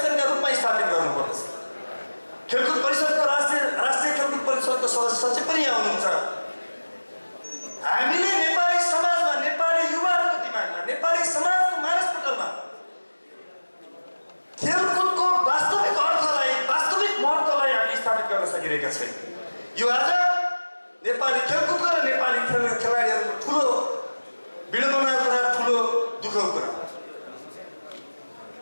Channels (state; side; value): inverted; both; correlation -1.00